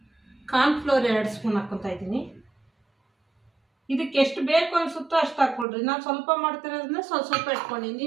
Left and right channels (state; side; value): drops out; left; at 5.7 s